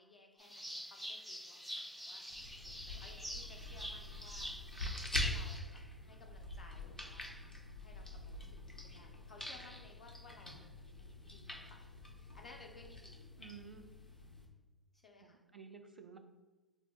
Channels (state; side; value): normal; both; correlation 0.36